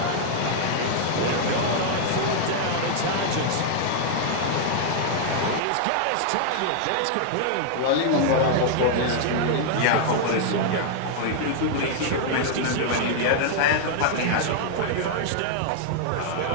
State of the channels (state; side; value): different; both; correlation 0.00